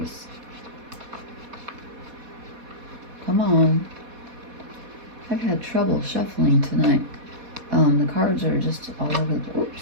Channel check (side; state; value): left; late; 4.1 ms